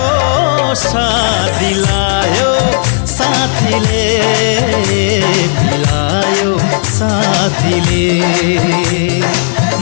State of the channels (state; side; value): silent; right; 62 dB below the other